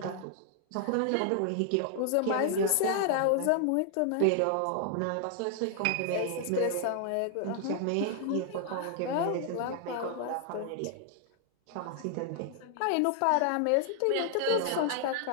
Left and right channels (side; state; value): both; different; correlation 0.00